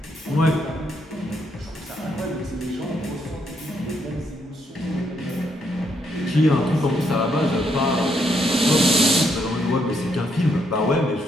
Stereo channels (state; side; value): normal; both; correlation 0.75